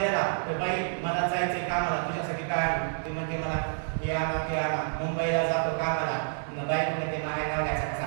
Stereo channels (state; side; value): silent; left; 59 dB below the other